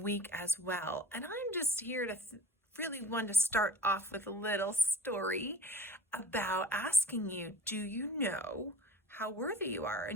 week as well. And I'm just here to really want to start off with a little story about asking you, do you know how worthy you are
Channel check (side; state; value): both; normal; correlation 0.41